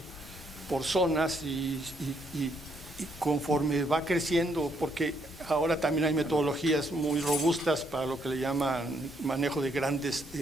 por zonas y conforme va creciendo, porque ahora también hay metodologías muy robustas para lo que le llaman manejo de grandes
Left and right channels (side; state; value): both; normal; correlation 0.73